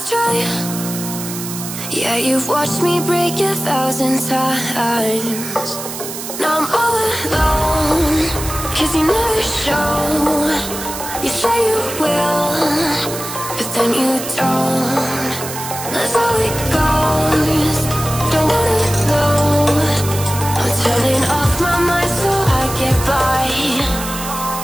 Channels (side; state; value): right; noise; hiss, 8 dB below the sound